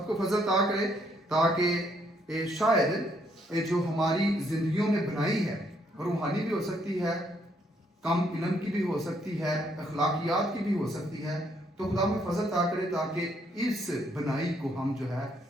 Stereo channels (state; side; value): normal; both; correlation 0.71